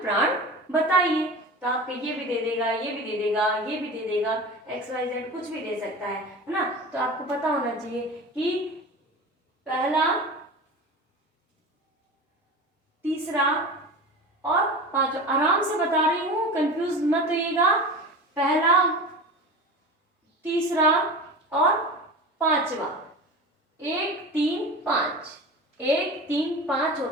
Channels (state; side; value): normal; both; correlation 0.32